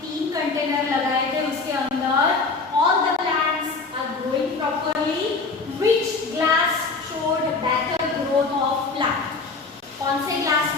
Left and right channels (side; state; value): right; quieter; 4.0 dB